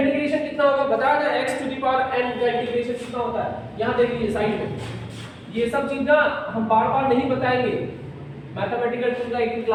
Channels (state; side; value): identical; both; correlation 1.00